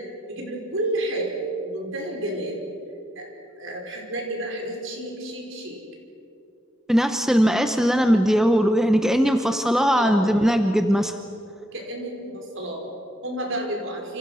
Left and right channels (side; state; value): both; normal; correlation 0.80